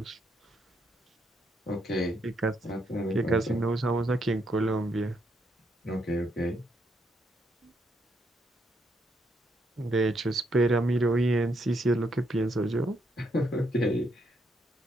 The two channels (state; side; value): normal; both; correlation 0.76